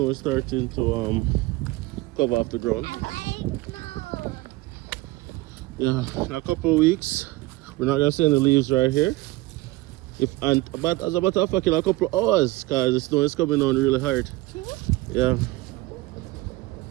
is starting to cover up the ground. Yeah, in a couple of weeks, we're not gonna see any leaves right here. But as a matter of fact, in a couple of hours, because the snow is coming on really hard. Yeah.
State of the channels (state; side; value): quieter; left; 19.8 dB